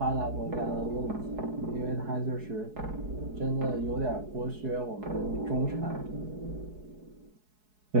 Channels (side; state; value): left; late; 4.7 ms